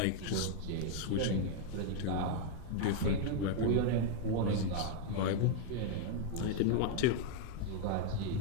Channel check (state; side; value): different; both; correlation 0.00